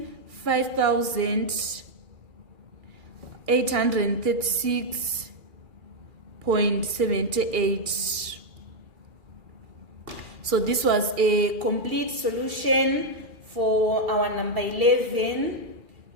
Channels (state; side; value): late; left; 2.4 ms